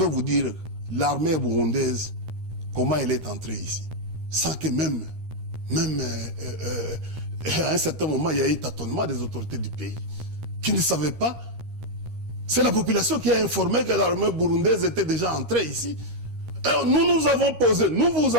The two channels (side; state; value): left; late; 13 ms